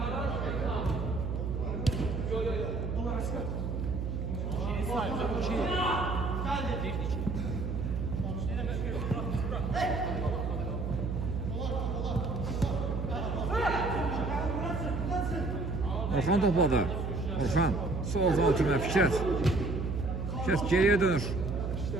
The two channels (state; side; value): noise; right; hum, 3 dB below the sound